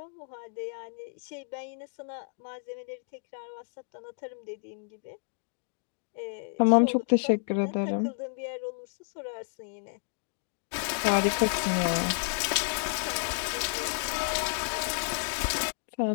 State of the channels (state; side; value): silent; right; digital silence